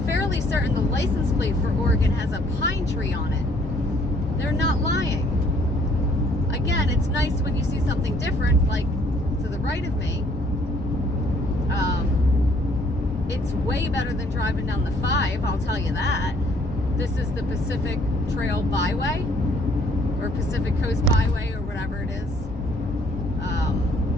fairly certain the license plate for Oregon has a pine tree on it. They're not lying. Again, it's nice when you see something different, like to the right of me. It's way better than driving down the 5, I'll tell you that. This is the Pacific Trail Byway, or Pacific Coast Byway, or whatever it is.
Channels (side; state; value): both; normal; correlation 0.63